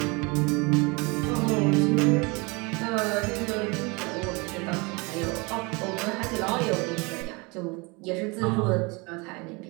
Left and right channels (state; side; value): quieter; left; 27.4 dB